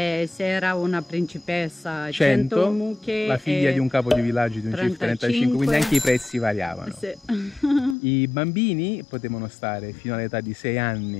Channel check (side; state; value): right; drops out; at 8.0 s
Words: era una principessa, 100 mucche, la figlia di un capo di villaggio di un CIF 35, quindi anche i prezzi variavano. Sì. I bambini potevano stare fino all'età di 6